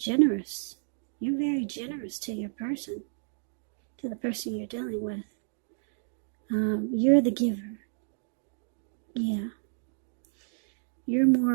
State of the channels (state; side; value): silent; left; digital silence